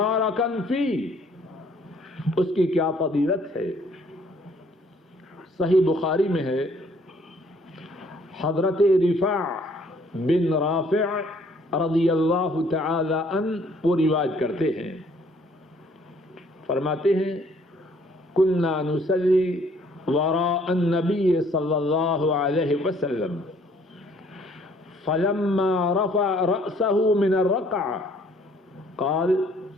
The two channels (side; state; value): both; normal; correlation 0.61